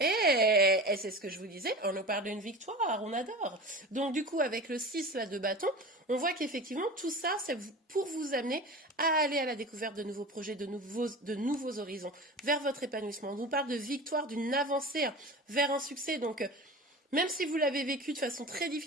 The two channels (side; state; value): both; normal; correlation 0.33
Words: Et c'est ce que je vous disais, on nous parle d'une victoire, on adore. Donc du coup, avec le 6 là, de bâton, on voit qu'effectivement, tout ça, c'est pour vous amener à aller à la découverte de nouveaux projets, de nouveaux horizons, vers votre épanouissement. On nous parle de victoire, d'une avancée vers un succès. Donc, même si vous l'avez vécu de façon très